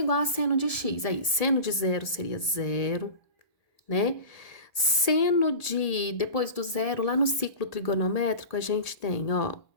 a seno de x, aí seno de zero seria zero, né? Seno de, depois do zero, lá no ciclo trigonométrico, a gente tem, ó,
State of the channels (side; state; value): right; late; 1.8 ms